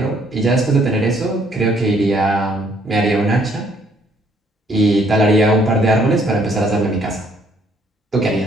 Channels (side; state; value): both; normal; correlation 0.66